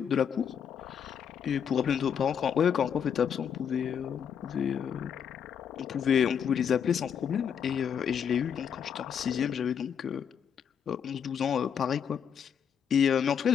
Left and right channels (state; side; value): quieter; right; 7.8 dB